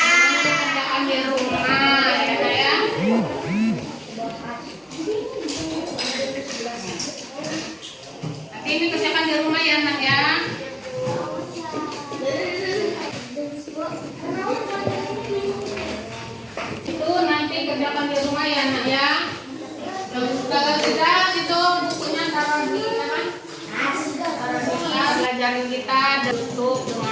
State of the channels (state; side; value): identical; both; correlation 1.00